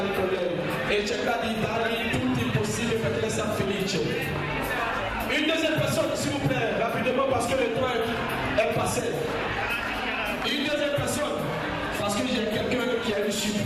con lei. E cercare di dargli tutto il possibile perché lei sia felice. Une deuxième personne, s'il vous plaît, rapidement parce que le temps est passé. Une deuxième personne, parce que j'ai quelqu'un qui a une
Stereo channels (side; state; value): both; identical; correlation 1.00